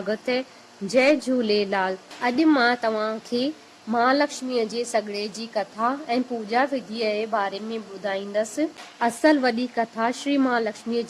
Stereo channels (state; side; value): identical; both; correlation 1.00